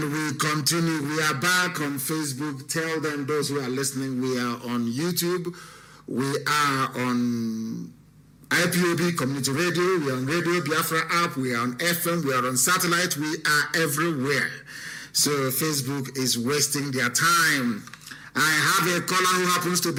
we continue. We are back on Facebook. Tell them, those who are listening, we are on YouTube. We are on IPOB Community Radio. We are on Radio Biafra app. We are on FM. We are on satellite. We are everywhere. So Facebook is wasting their time. I have a caller who happens to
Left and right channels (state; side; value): identical; both; correlation 1.00